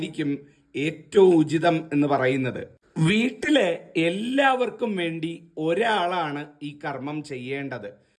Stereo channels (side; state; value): both; identical; correlation 1.00